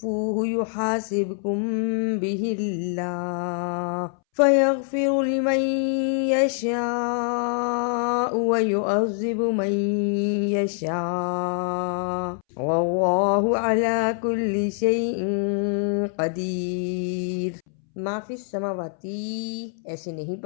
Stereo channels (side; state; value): right; silent; 62 dB below the other